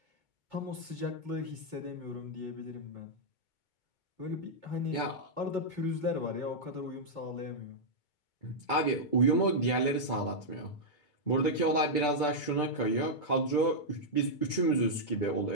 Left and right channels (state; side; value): late; right; 2.2 ms